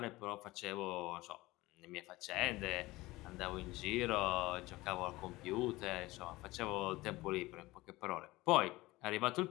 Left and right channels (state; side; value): quieter; right; 19.7 dB